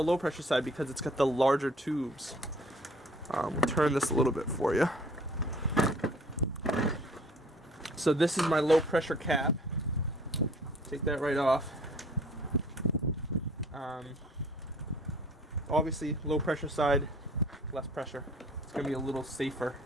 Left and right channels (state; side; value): normal; both; correlation 0.53